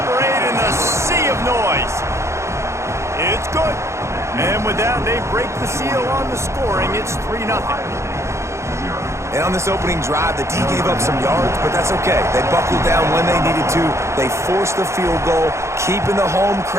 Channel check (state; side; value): late; left; 0.14 ms